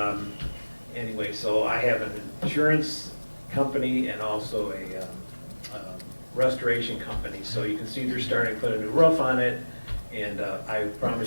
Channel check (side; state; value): both; inverted; correlation -1.00